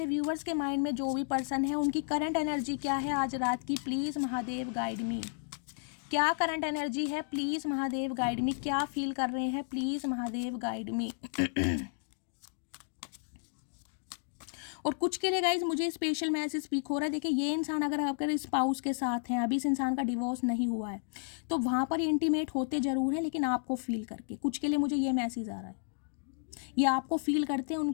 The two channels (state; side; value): silent; right; digital silence